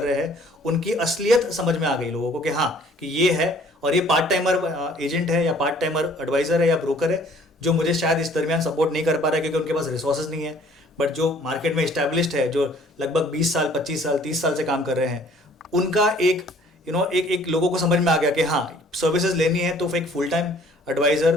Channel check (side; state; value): both; normal; correlation 0.56